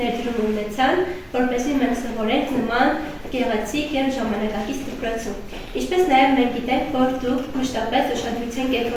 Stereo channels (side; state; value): both; identical; correlation 1.00